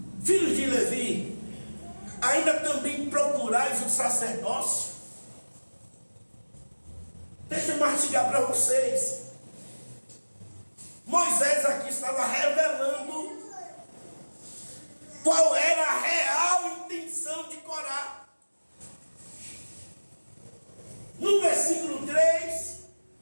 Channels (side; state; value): both; inverted; correlation -1.00